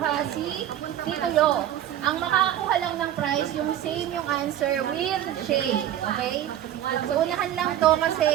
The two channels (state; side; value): quieter; left; 11.6 dB